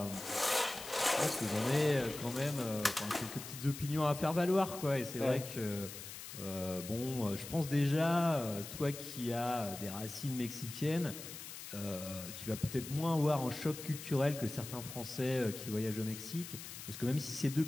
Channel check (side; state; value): left; noise; hiss, 11 dB below the sound